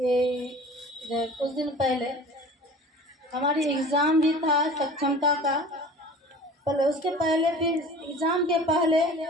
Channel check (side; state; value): both; normal; correlation 0.41